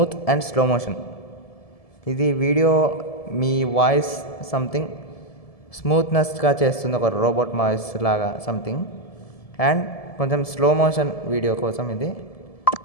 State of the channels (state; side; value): late; right; 1.7 ms